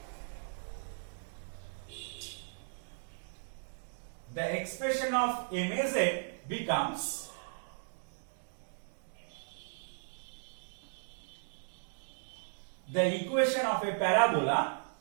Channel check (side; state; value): left; silent; digital silence